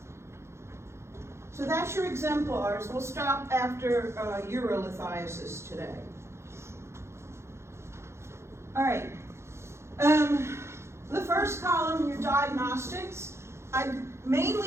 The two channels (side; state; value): left; late; 0.13 ms